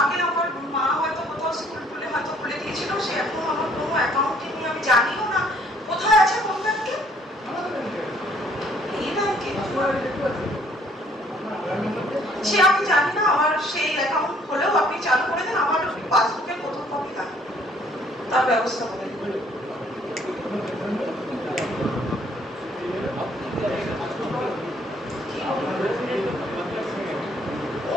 আগে আমার মা হয়তো কোথাও স্কুল খুলে হয়তো খুলে দিয়েছিল, সে এখন আমার কোনো অ্যাকাউন্টে নিয়ে আমি জানিও না কোথায় আছে, কোন ব্যাংকে, এই ব্যাংকে সে আমি জানি না। আমার সেই অ্যাকাউন্ট হলেও আপনি চালু করে দেন, আমার পাসবুকের প্রথম কপি লাগে, তার ব্যবস্থা করে দিন।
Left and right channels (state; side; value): normal; both; correlation 0.62